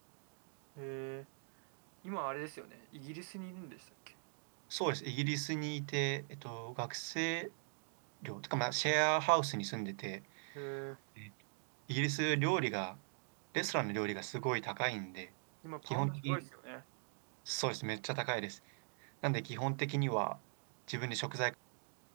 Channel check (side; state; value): left; silent; digital silence